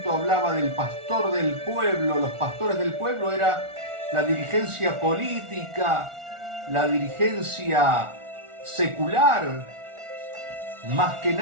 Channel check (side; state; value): left; late; 1.4 ms